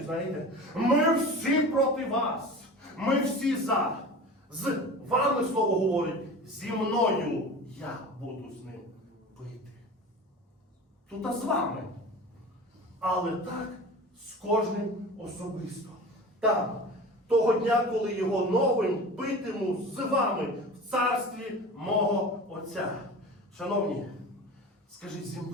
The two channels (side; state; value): both; normal; correlation 0.35